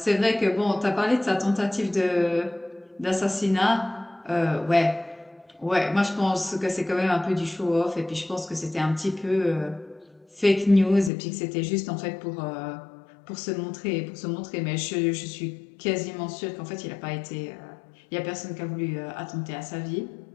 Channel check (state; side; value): drops out; right; at 11.1 s